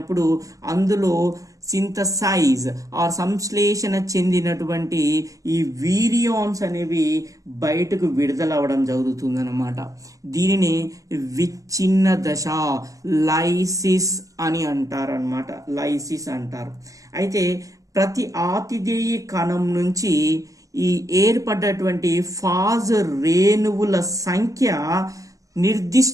అందులో సింథసైజ్ ఆర్ సంశ్లేషణ చెందినటువంటి ఈ వీరియాన్స్ అనేవి బయటకు విడుదలవ్వడం జరుగుతుంది అన్నమాట. దీనిని విచ్ఛిన్న దశ, లైసిస్ అని అంటారనమాట. అయితే ప్రతి ఆతిథేయ కణం నుంచి ఈ ఏర్పడ్డటువంటి ఫాజ్ రేణువుల సంఖ్య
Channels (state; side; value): late; left; 0.16 ms